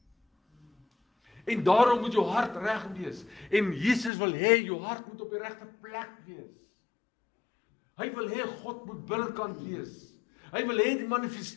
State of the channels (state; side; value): drops out; right; at 4.1 s